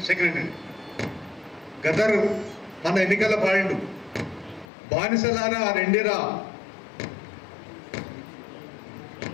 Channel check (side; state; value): right; drops out; at 4.7 s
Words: సెక్రటరీ. గద్దరు మన ఎన్నికల్లో పాడిండు, బానిసలారా రెండిరా,